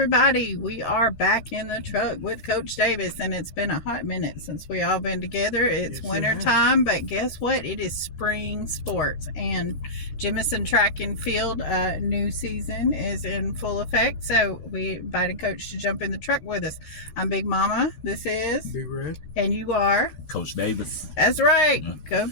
We are back in the truck with Coach Davis, and it's been a hot minute since we all been together. It's winter time, but guess what? It is spring sports, and Jemison Track and Field new season is in full effect. So we invited Coach to jump in the truck with us. I'm Big Mama. This is Big Red, and you are Coach Davis. That's right. Go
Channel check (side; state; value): right; late; 14 ms